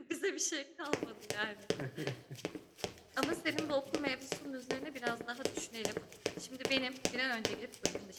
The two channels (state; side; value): identical; both; correlation 1.00